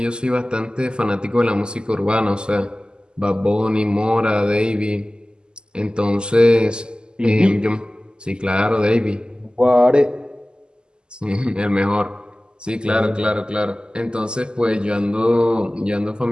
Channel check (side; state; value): left; late; 0.047 ms